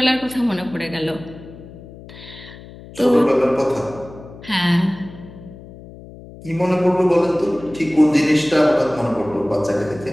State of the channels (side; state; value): left; noise; hum, 17 dB below the sound